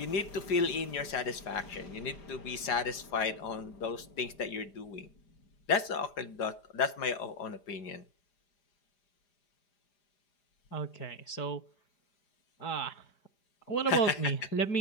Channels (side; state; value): right; late; 4.9 ms